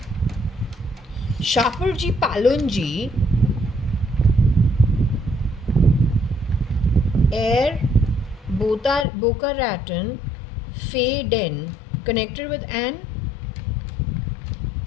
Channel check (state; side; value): drops out; right; at 9.1 s